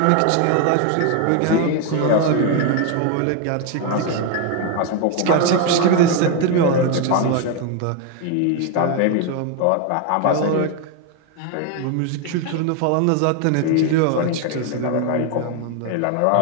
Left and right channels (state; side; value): different; both; correlation 0.01